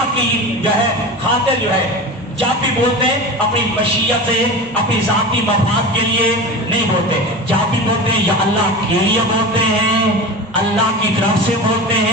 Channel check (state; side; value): normal; both; correlation 0.29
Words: کی جو ہے خاطر جو ہے۔ جب بھی بولتے ہیں اپنی مشیت سے، اپنی ذاتی مفاد کے لیے نہیں بولتے، جب بھی بولتے ہیں یا اللہ کے لیے بولتے ہیں، اللہ کی طرف سے بولتے